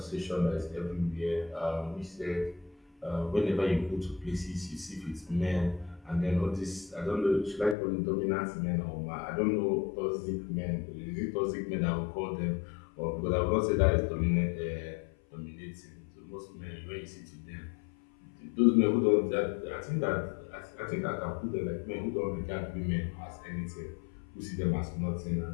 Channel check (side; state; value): right; drops out; at 7.8 s